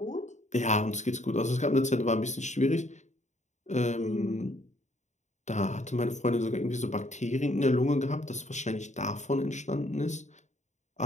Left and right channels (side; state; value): right; late; 0.34 ms